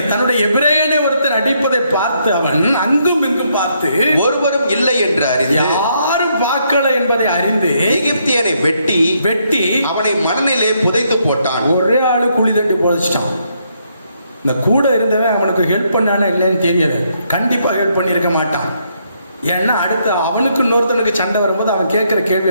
தன்னுடைய எபிரேயனை ஒருத்தன் அடிப்பதை பார்த்து அவன் அங்கும் இங்கும் பார்த்து, ஒருவரும் இல்லை என்று அறிந்து, யாரும் பார்க்கல என்பதை அறிந்து, எகிப்தியனை வெட்டி அவனை மணலிலே புதைத்து போட்டான். ஒரே ஆளு குழி தண்டி புதைச்சிட்டான். இந்த கூட இருந்தவன் அவனுக்கு ஹெல்ப் பண்ணானே இல்லைன்னு தெரியல. கண்டிப்பா ஹெல்ப் பண்ணியிருக்க மாட்டான். ஏன்னா அடுத்து அவனுக்கு இன்னொருத்தனுக்கு சண்டை வரும்போது அவன் கேட்கிற கேள்வி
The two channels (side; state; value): both; inverted; correlation -0.74